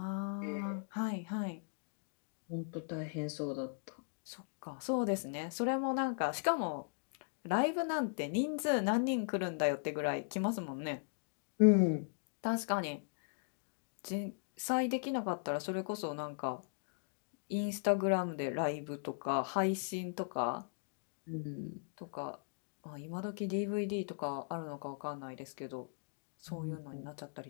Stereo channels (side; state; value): right; silent; digital silence